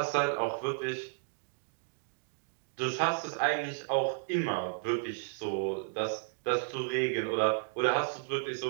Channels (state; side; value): silent; left; digital silence